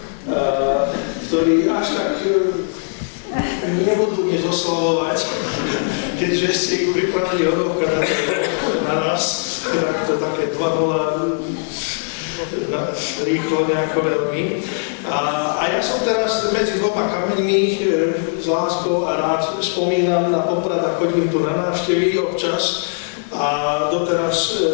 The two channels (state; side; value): silent; right; 66 dB below the other